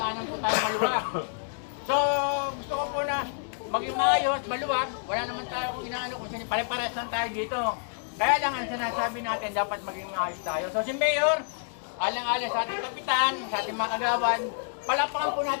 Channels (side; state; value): right; silent; digital silence